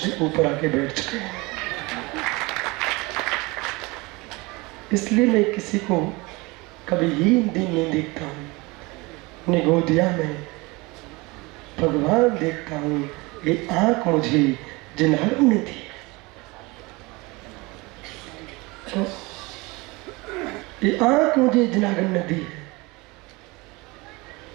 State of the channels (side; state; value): left; quieter; 24.4 dB